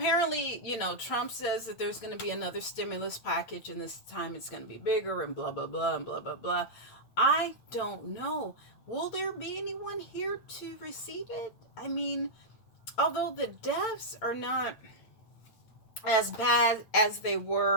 Trump says that there's going to be another stimulus package, and this time it's going to be bigger, and blah, blah, blah, and blah, blah, blah. I don't know. Will there be anyone here to receive it? I mean, although the deaths are not as bad as they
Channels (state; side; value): late; right; 8.8 ms